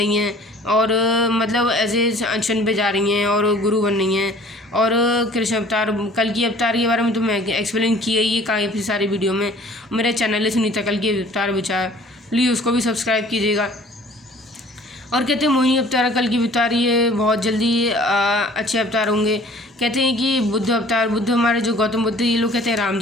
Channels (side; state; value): both; normal; correlation 0.51